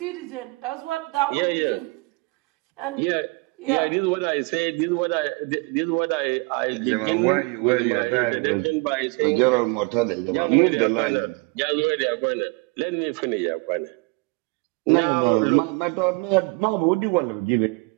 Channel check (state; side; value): quieter; left; 28.2 dB